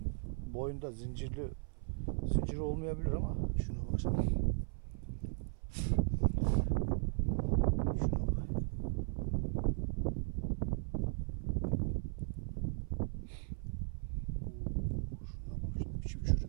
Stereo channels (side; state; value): left; silent; 53 dB below the other